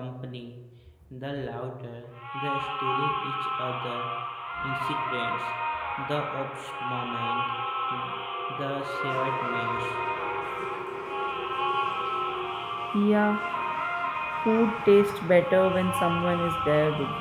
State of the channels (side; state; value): both; identical; correlation 1.00